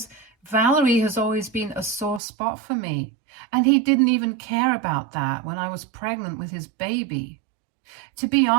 Valerie has always been a sore spot for me. And he didn't even care about that when I was pregnant with his baby. To be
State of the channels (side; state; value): left; drops out; at 2.2 s